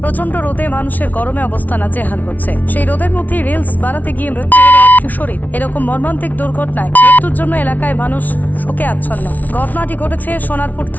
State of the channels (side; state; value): right; late; 0.077 ms